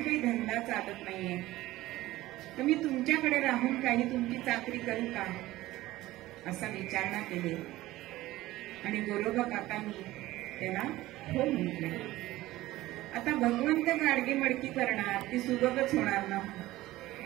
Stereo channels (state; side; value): quieter; left; 17.0 dB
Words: धंदा चालत नाहीये, तर मी तुमच्याकडे राहून काही तुमची चाकरी करू का, असा विचारणा केली. आणि गोरोबा काकांनी त्याला हो म्हटले. आता भगवंत गाडगे मडकी करणार, ती सुबकच होणार ना.